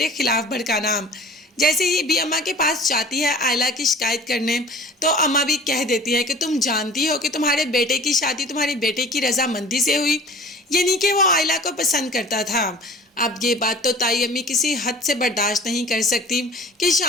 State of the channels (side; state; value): both; normal; correlation 0.44